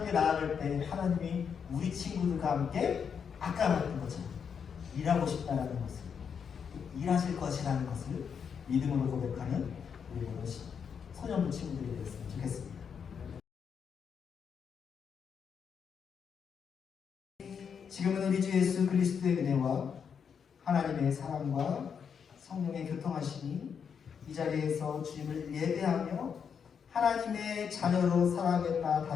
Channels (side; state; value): right; quieter; 6.9 dB